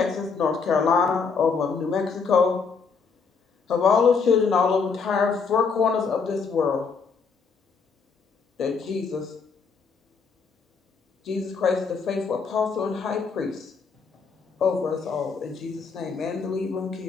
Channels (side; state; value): right; quieter; 5.3 dB